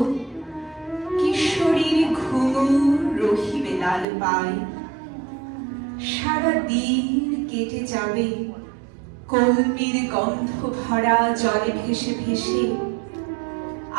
কিশোরীর ঘুঙুর রহিবে লাল পায়। সারা দিন কেটে যাবে কলমির গন্ধ ভরা জলে ভেসে ভেসে।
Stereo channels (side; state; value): left; drops out; at 4.0 s